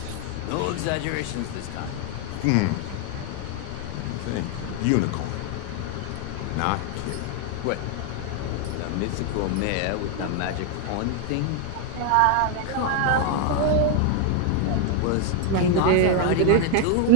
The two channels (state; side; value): different; both; correlation 0.01